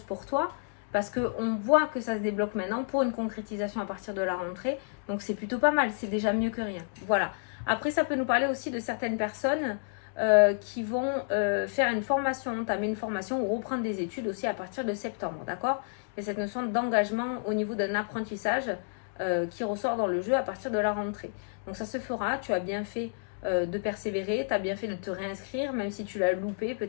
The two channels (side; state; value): right; silent; digital silence